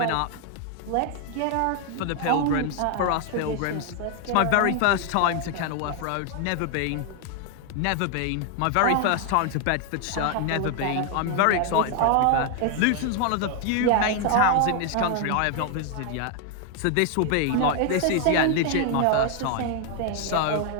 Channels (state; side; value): different; both; correlation 0.01